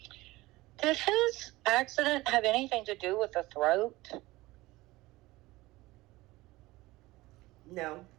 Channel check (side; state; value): left; quieter; 19.5 dB